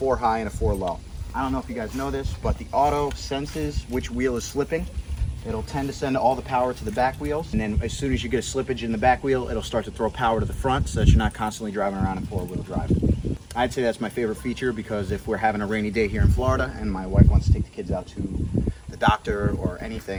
high and a 4 low. I don't know if you guys know this, but the auto senses which wheel is slipping. It'll tend to send all the power to the back wheels, and then as soon as you get a slippage in the back wheel, it'll start to throw power to the front so that you're not constantly driving around in 4-wheel drive. I'd say that's my favorite feature, because if we're having a rainy day here in Florida and my wife wants to take the kids out to the doctor or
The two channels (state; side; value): identical; both; correlation 1.00